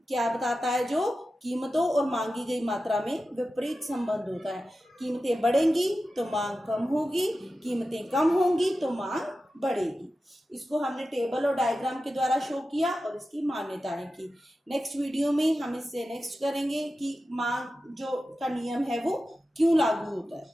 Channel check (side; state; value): both; normal; correlation 0.93